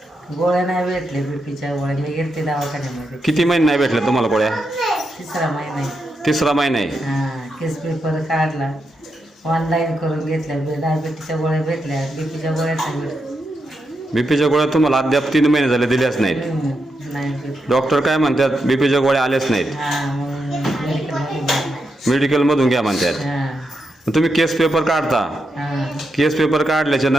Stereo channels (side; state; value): both; normal; correlation 0.85